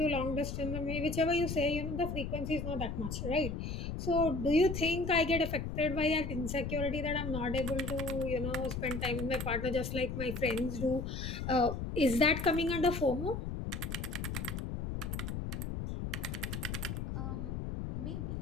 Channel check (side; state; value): left; noise; rumble, 4 dB below the sound